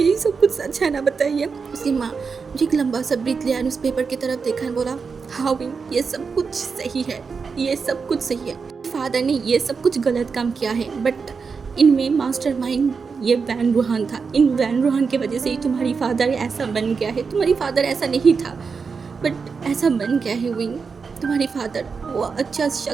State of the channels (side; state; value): left; quieter; 5.3 dB